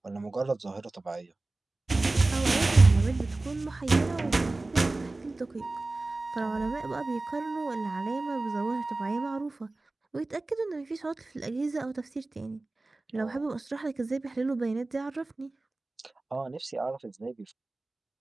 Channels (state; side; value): quieter; left; 3.1 dB